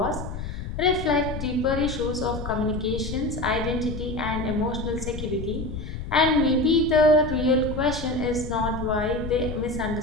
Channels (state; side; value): noise; left; rumble, 7 dB below the sound